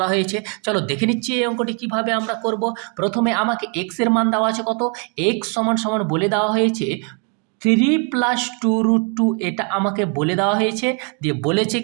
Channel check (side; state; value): left; quieter; 37.3 dB